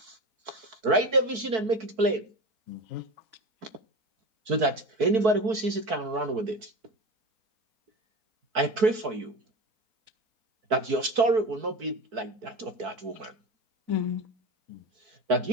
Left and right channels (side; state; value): left; late; 4.6 ms